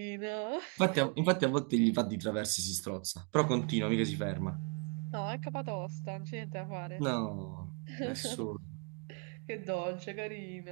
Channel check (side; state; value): left; quieter; 36.6 dB